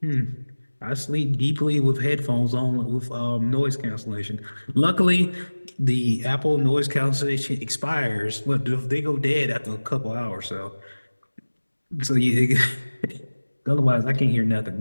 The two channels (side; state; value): both; inverted; correlation -1.00